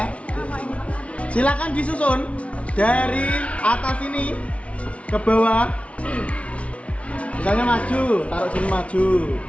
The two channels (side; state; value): right; late; 0.063 ms